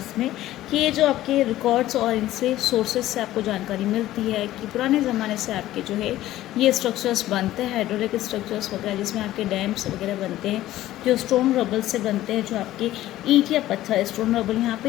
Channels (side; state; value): right; quieter; 14.7 dB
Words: में कि ये जो आपके रिकॉर्ड्स और इनसे सोर्सेज से आपको जानकारी मिलती है कि पुराने ज़माने से आपके जो है ये स्ट्रक्चर्स बनते हैं, हाइड्रोलिक स्ट्रक्चर्स वगैरह, जिसमें आपके डैम्स वगैरह बनते हैं जो स्टोन रबल से बनते हैं, जो आपके ईंट या पत्थर, स्टोन रबल यहाँ पे